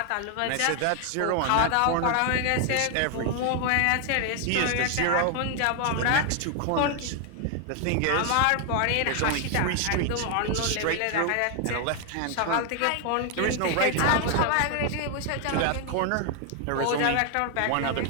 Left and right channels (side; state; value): both; different; correlation 0.00